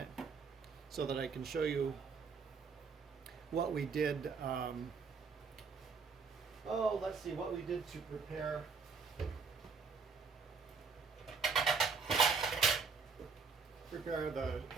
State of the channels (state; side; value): quieter; left; 5.2 dB